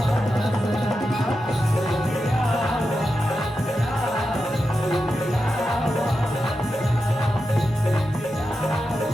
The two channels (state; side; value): normal; both; correlation 0.89